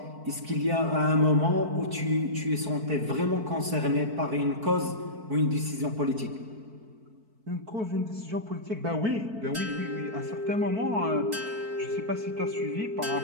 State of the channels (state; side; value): late; left; 4.5 ms